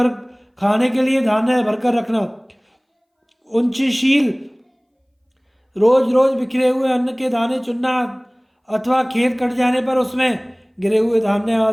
खाने के लिए धान्य भरकर रखना, उच्चशील, रोज रोज बिखरे हुए अन्न के दाने चुनना अथवा खेत कट जाने पर उसमें गिरे हुए धान्य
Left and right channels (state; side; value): identical; both; correlation 1.00